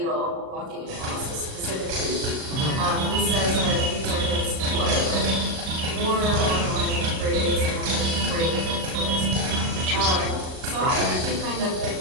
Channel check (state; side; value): late; left; 38 ms